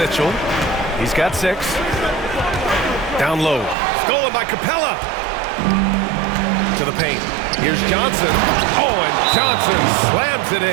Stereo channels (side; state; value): left; drops out; at 3.8 s